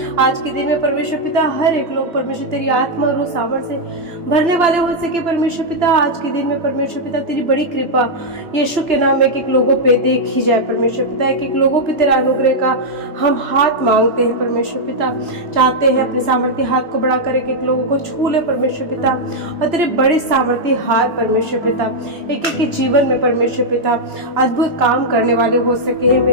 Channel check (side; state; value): left; late; 3.0 ms